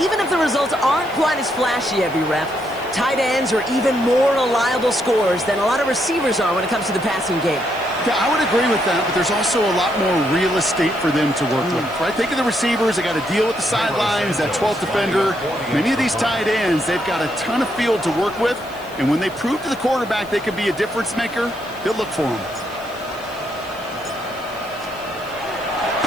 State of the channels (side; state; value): right; noise; hiss, 23 dB below the sound